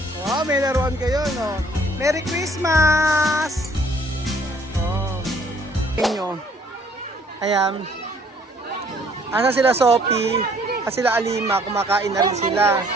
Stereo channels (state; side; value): normal; both; correlation 0.60